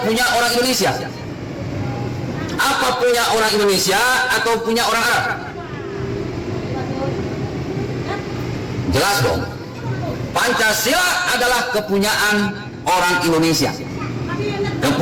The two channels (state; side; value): identical; both; correlation 1.00